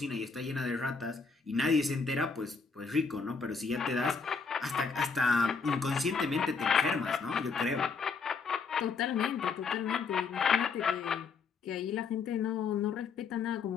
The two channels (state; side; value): quieter; right; 5.1 dB